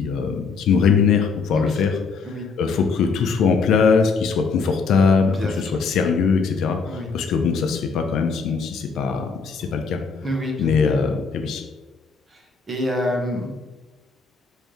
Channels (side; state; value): right; quieter; 4.9 dB